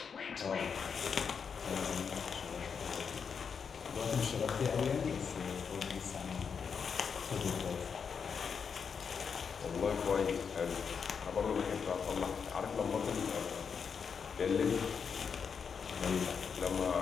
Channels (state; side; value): quieter; right; 6.3 dB